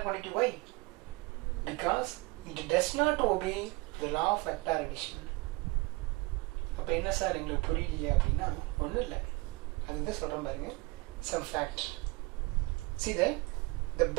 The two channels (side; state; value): left; quieter; 24.7 dB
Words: quantity. Why? Because it does not obey the law of vector addition. அப்போ என்ன sir எங்களுக்கு புரியலையே அப்படின்னா ஒன்றும் இல்லை, அதுதான் சொல்கிறேன் பாருங்க. Some fact. See that the